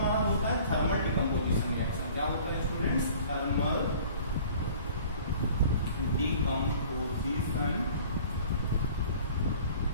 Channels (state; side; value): inverted; both; correlation -0.49